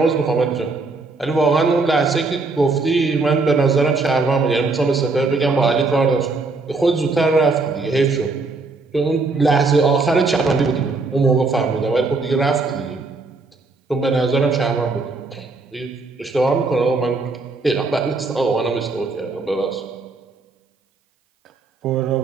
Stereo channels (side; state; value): left; quieter; 3.7 dB